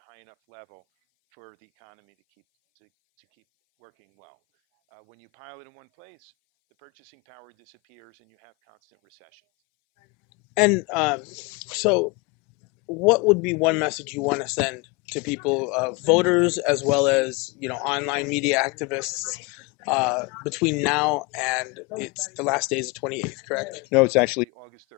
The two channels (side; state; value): right; quieter; 25.8 dB